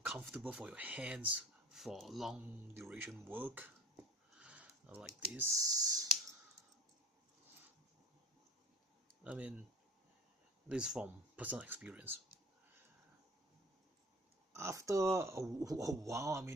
for your hands for long duration work like this. This is from personal experience. After a while,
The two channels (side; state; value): both; normal; correlation 0.45